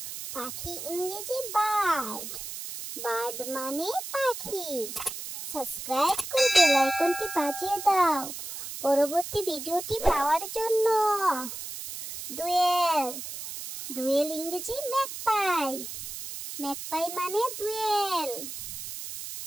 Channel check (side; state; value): right; noise; hiss, 8 dB below the sound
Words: পাখি ইংরেজি বার্ড, বার্ড মানে পাখি। সাবস্ক্রাইব করে বেল আইকনটি বাজিয়ে দাও পরবর্তী ভিডিওটি পাওয়ার জন্য। দোয়েল, দোয়েল ইংরেজি ম্যাকপাই, ম্যাকপাই মানে দোয়েল।